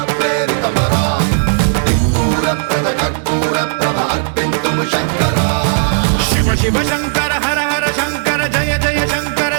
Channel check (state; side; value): silent; left; digital silence